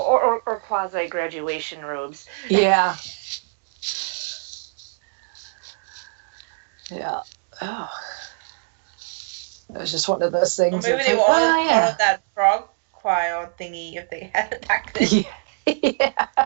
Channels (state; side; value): silent; left; 63 dB below the other